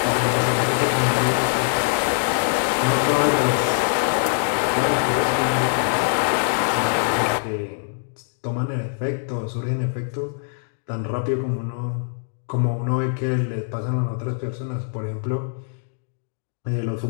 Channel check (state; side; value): silent; right; digital silence